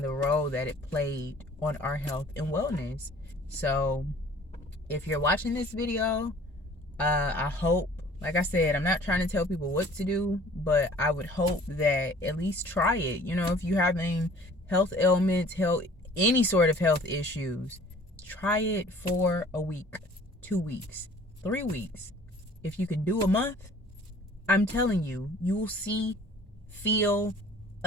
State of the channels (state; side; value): normal; both; correlation 0.51